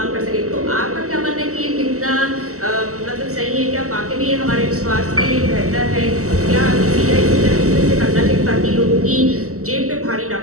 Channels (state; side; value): late; left; 0.64 ms